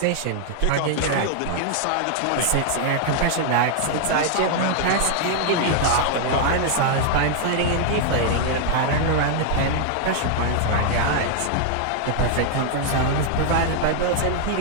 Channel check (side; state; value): both; different; correlation 0.00